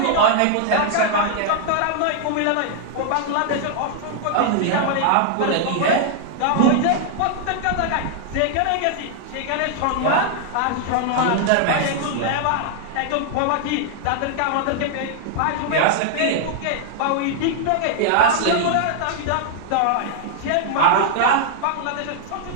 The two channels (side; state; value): both; different; correlation 0.00